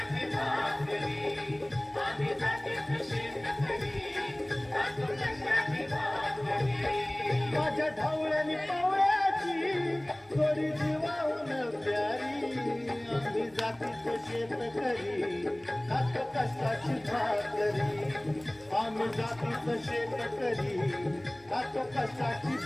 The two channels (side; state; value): right; noise; hum, 29 dB below the sound